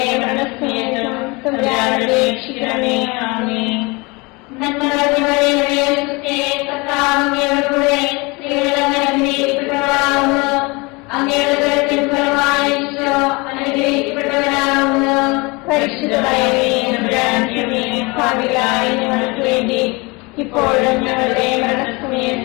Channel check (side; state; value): right; quieter; 26.5 dB